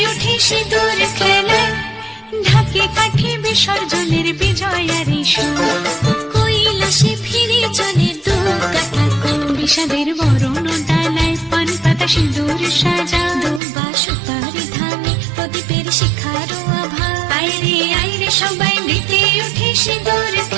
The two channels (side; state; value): left; drops out; at 13.6 s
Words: উঠে সিঁদুর খেলায়, ঢাকে কাঠি বিসর্জনের বিজয়ারি সুর, কৈলাসে ফিরে চলে দু কাঠা কুল। বিষাদের বরণ ডালায় পান পাতা সিঁদুর সাজা, দৌপা সুপারি ধানে প্রদীপের শিখারো আভা। আইরে সবাই মেতে উঠে সিঁদুর